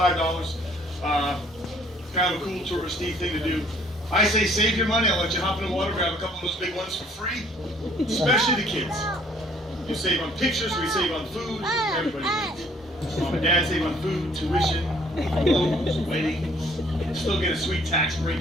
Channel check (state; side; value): normal; both; correlation 0.59